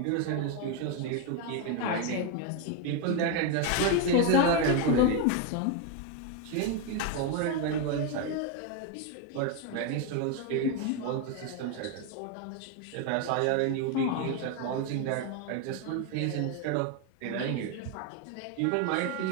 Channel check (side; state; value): both; different; correlation 0.02